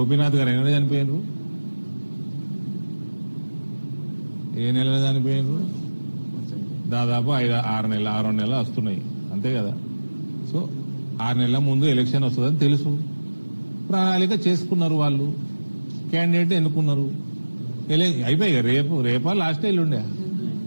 గారు ఎన్నడూ చనిపోయినరు? ఏ నెలలో చనిపోయినరు? దాదాపు 6 నెలలు వస్తున్నాయి, అంతే కదా. సో 6 నెలల ముందు ఎలక్షన్ వస్తుందని తెలుసు, ప్రణాళిక చేసుకున్నారు వాళ్ళు, క్యాండిడేట్ ఎన్నుకున్నారు, అయిపోయి రేపా లాస్ట్ ఎల్లుండే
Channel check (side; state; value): both; inverted; correlation -1.00